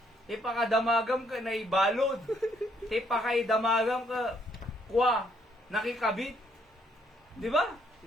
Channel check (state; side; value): normal; both; correlation 0.69